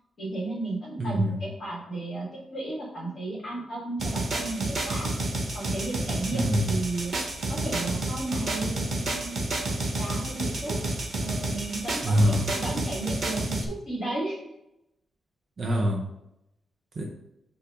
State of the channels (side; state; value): both; normal; correlation 0.83